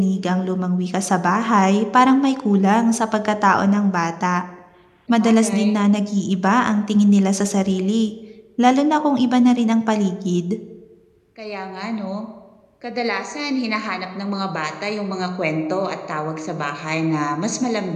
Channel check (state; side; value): identical; both; correlation 1.00